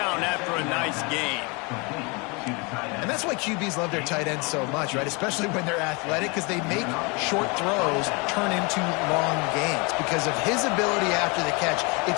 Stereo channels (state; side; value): quieter; right; 29.4 dB